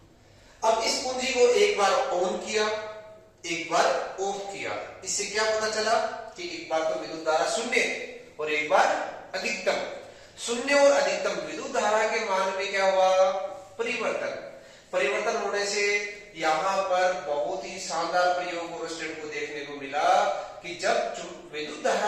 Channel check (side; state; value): both; identical; correlation 1.00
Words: अब इस कुंजी को एक बार ऑन किया, एक बार ऑफ किया। इससे क्या पता चला कि एक बार तो विद्युत धारा शून्य और एक बार अधिकतम। शून्य और अधिकतम विद्युत धारा के मान में क्या हुआ? परिवर्तन होने से यहां पर बहुत ही शानदार प्रयोग ओरस्टेड को देखने को मिला कि जब विद्युत